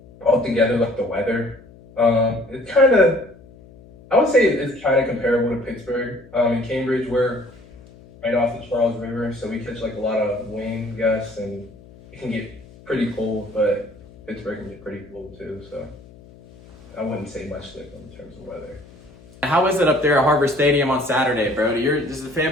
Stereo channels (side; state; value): left; noise; hum, 22 dB below the sound